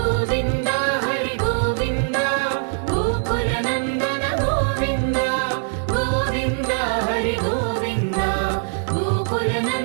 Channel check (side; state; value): left; silent; digital silence